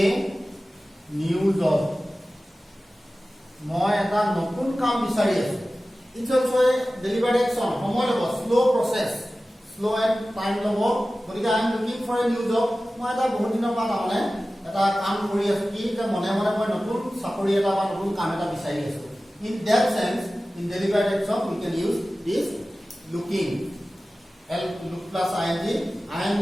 new job মই এটা নতুন কাম বিচাৰি আছো It's also a deliberate action. Slow process, slow and time lobo. But I am looking for a new job. মই এটা বহুত দিনৰ পৰা মানে এটা কাম কৰি আছো কি যে মনে মনে মই নতুন চাকৰি এটা বা নতুন কাম এটা বিচাৰি আছো In that sense, in deliberate action, we can use this looking. Look plus ing. I am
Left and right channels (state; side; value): normal; both; correlation 0.96